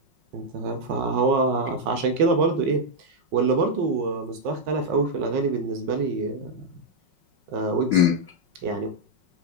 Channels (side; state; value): left; late; 5.4 ms